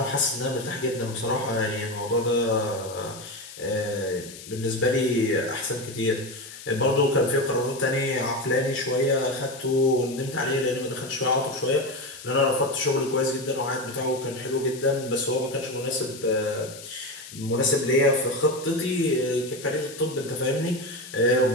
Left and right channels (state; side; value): noise; left; hiss, 15 dB below the sound